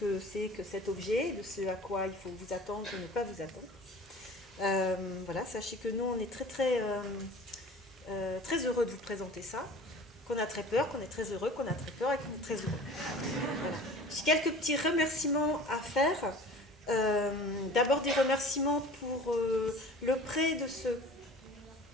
c'est que cet objet, de ce à quoi il faut vous attendre ou ne pas vous attendre. Voilà, sachez que nous, on est très heureux de vous présenter ça, qu'on a très peur, qu'on est très heureux, qu'on a très peur et qu'on est très heureux. Voilà. J'ai quelques petits remerciements à faire. D'abord des remerciements pour le prêt de ce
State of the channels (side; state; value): both; normal; correlation 0.42